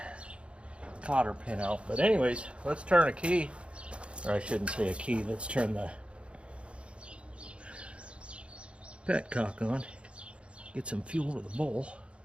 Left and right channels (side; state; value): left; late; 0.059 ms